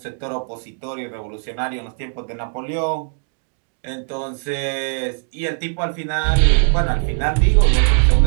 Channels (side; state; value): left; silent; 57 dB below the other